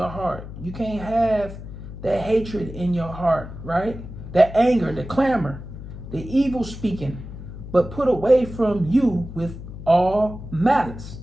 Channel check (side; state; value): left; noise; hum, 12 dB below the sound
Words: heart. You can't have that hatred in your heart, right? That anger, the clamor, the evil speaking, but put away from you with all malice.